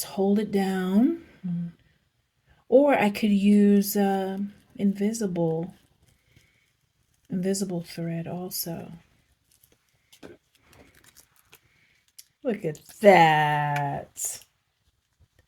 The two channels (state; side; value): identical; both; correlation 1.00